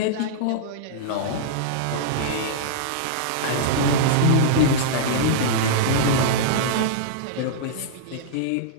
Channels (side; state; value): both; different; correlation -0.02